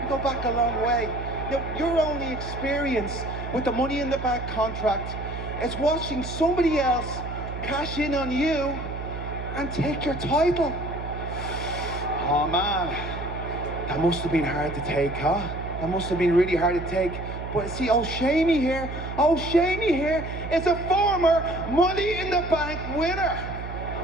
You go back a long way. Now, your only experience with the Money in the Bank contract is watching somebody else cash in on you and take your title. Oh, man. That must have been hard to take, huh? That must have been really hard to take. But see, old Shamey here is a former Money in the Bank winner.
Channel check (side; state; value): right; noise; hum, 8 dB below the sound